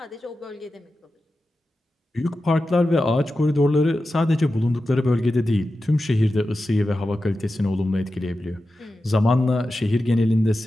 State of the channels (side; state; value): both; normal; correlation 0.92